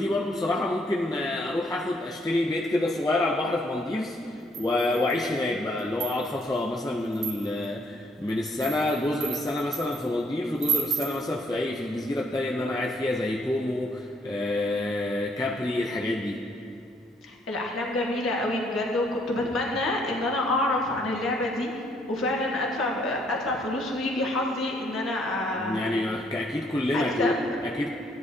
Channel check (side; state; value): both; normal; correlation 0.68